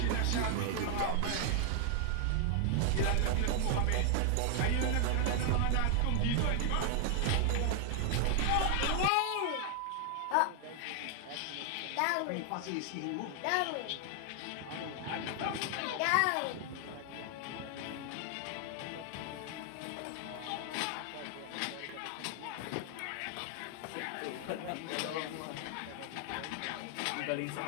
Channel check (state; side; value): different; both; correlation 0.00